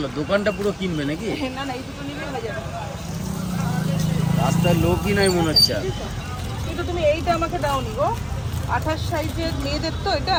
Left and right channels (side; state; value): both; identical; correlation 1.00